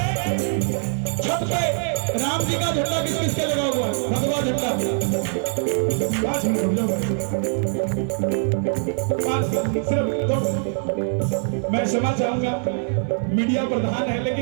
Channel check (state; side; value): silent; left; 64 dB below the other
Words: छत पे राम जी का झंडा किस किस के लगा हुआ है? भगवा झंडा। 5 मिनट सिर्फ 2। मैं क्षमा चाहूंगा, मीडिया प्रधान है,